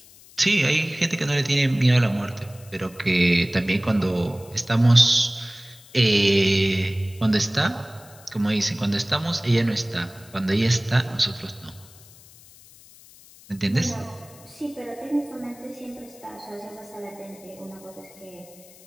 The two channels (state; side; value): noise; left; hiss, 23 dB below the sound